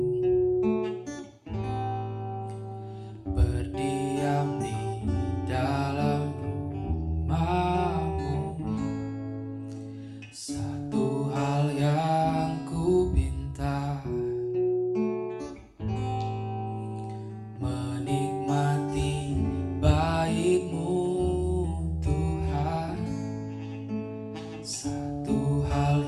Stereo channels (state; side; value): identical; both; correlation 1.00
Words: berdiam di dalam rumahmu. Satu hal yang ku pinta, menikmati bait-Mu Tuhan. Satu hal